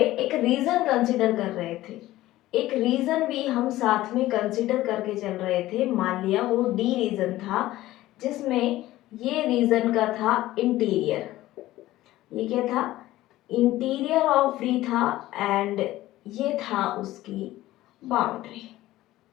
एक रीजन कंसिडर कर रहे थे। एक रीजन भी हम साथ में कंसिडर करके चल रहे थे। मान लिया वो डी रीजन था, जिसमें ये रीजन का था इंटीरियर। ये क्या था? इंटीरियर ऑफ डी था, एंड ये था उसकी बाउंड्री।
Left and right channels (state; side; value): quieter; right; 16.0 dB